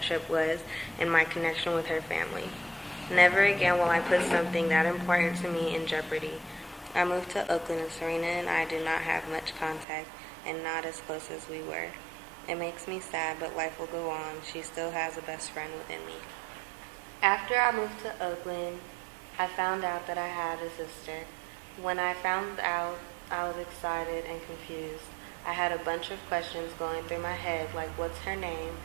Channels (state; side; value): drops out; left; at 9.9 s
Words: was and my connection with her family. Never again will I put something that important to me in jeopardy. I moved to Oakland and Serena and I did not have much contact and not as close as we were. It makes me sad, but life will go on. She still has a best friend within me. After I moved to Oakland, I found out that I had a sister. When I found out, I was excited and confused. I had a bunch of questions going through my head, like what's her name,